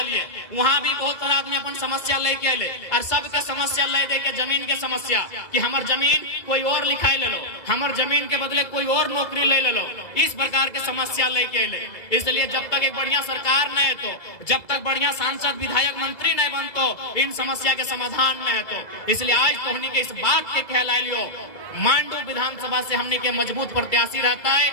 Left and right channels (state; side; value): late; right; 2.0 ms